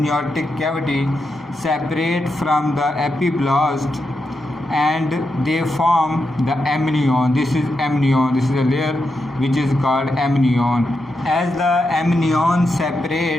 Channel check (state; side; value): normal; both; correlation 0.86